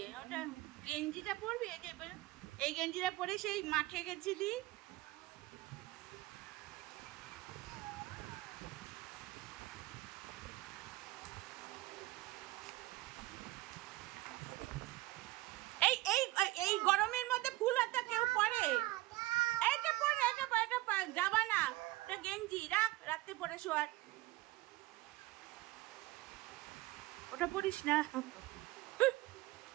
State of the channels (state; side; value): quieter; left; 18.7 dB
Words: ওটা গেঞ্জিটা পরবি, এই গেঞ্জিটা পরে সেই মাঠে গেছিলি। এই এই এই গরমের মধ্যে ফুল হাতা কেউ পরে? এটা পরে, এটা যাবা না, এটা গেঞ্জি রাখ, রাখতে পরে শোয়ার। ওটা পরিস না।